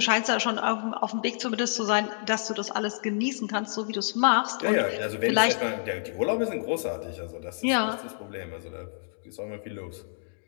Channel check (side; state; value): right; silent; digital silence